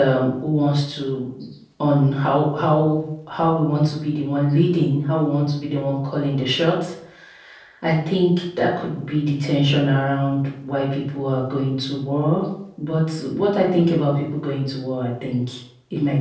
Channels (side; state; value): both; identical; correlation 1.00